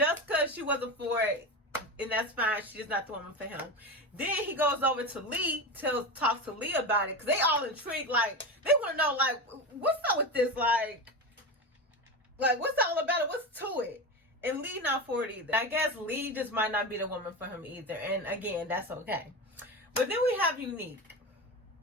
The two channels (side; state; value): both; normal; correlation 0.21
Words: she wasn't for it. And that's fine. She's not the woman for him. Then he goes over to Lee, talks to Lee about it, because they all intrigued. Like, they want to know, like, what's up with this? Like, what's all about it? What's to it? And Lee not for it either. I guess Lee just might not be the woman for him either. And again, that's okay. But then we have Unique.